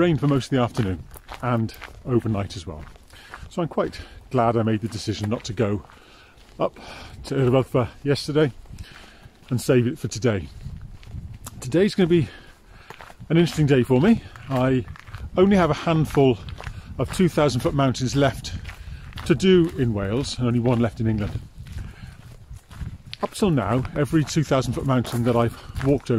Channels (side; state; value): both; identical; correlation 1.00